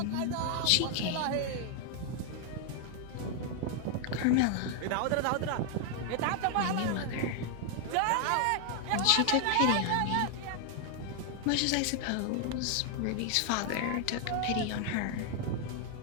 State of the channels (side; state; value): both; different; correlation 0.00